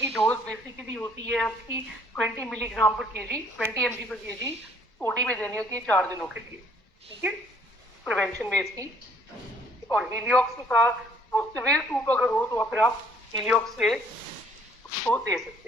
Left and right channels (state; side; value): normal; both; correlation 0.61